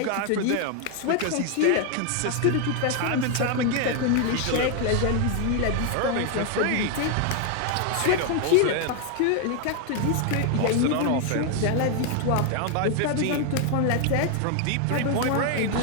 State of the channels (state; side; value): different; both; correlation 0.00